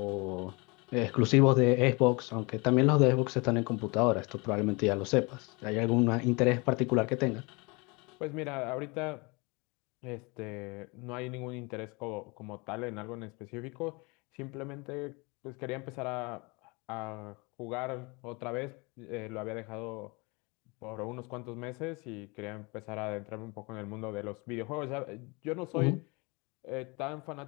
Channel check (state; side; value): quieter; right; 27.9 dB